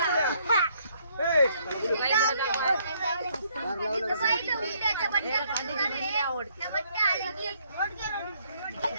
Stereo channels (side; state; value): both; inverted; correlation -0.68